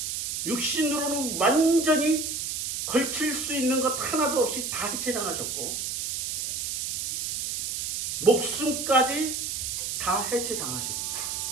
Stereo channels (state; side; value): noise; right; hiss, 3 dB below the sound